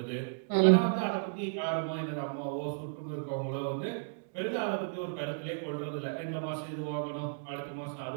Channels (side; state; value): left; silent; digital silence